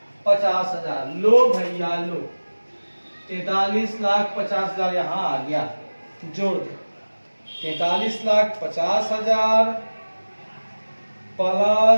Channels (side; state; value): both; inverted; correlation -1.00